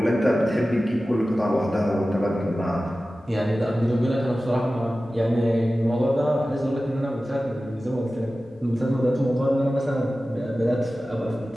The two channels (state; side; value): normal; both; correlation 0.95